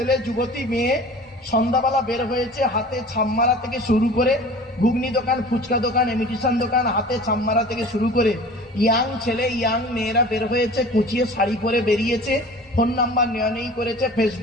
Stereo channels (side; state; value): both; normal; correlation 0.41